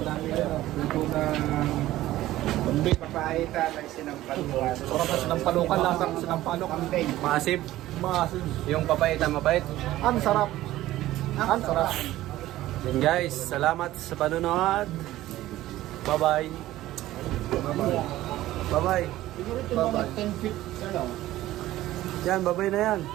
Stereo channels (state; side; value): quieter; left; 15.4 dB